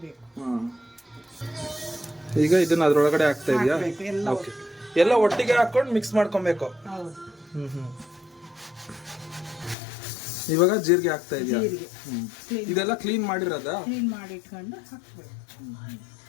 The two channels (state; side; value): drops out; right; at 9.8 s